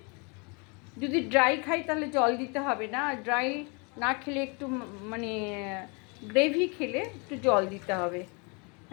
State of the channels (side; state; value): right; quieter; 32.2 dB